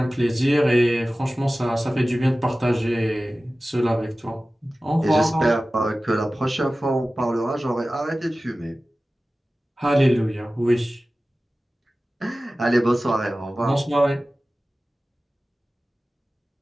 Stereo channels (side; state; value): both; normal; correlation 0.96